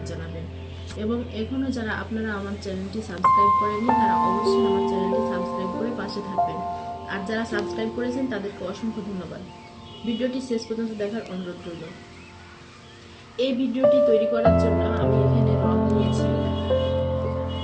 জানাবেন। এবং এখনো যারা আপনারা আমার চ্যানেলটি সাবস্ক্রাইব করেননি তারা অবশ্যই আমার চ্যানেলটি সাবস্ক্রাইব করে পাশে থাকবেন। আর যারা সাবস্ক্রাইব করেছেন তাদেরকে অসংখ্য ধন্যবাদ। ভিডিওটি শেষ পর্যন্ত দেখার অনুরোধ রইল। এই ভিডিওটি তৈরি করার জন্য আমি এখানে রং নিয়েছি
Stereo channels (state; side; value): identical; both; correlation 1.00